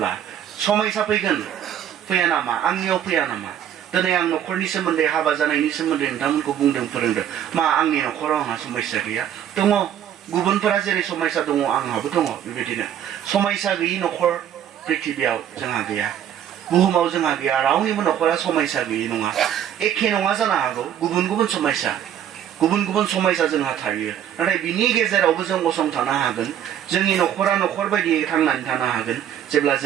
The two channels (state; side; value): quieter; left; 10.1 dB